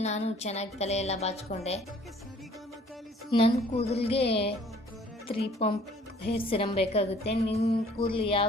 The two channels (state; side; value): normal; both; correlation 0.56